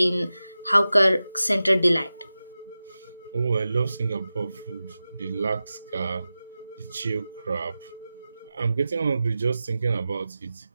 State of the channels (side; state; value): both; inverted; correlation -0.94